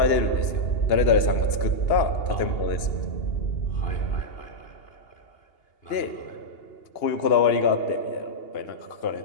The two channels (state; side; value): late; right; 2.8 ms